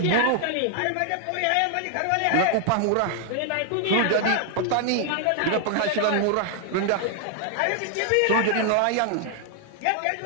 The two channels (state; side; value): different; both; correlation 0.00